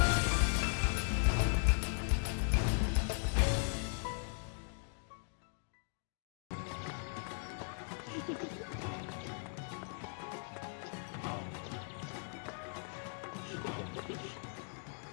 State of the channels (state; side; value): silent; right; 52 dB below the other